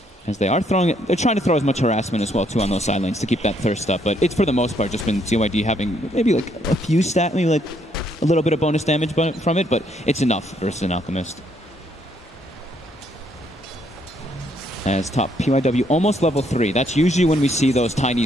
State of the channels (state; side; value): normal; both; correlation 0.71